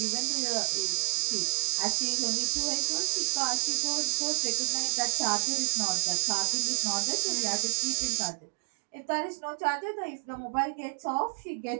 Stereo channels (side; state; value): left; silent; digital silence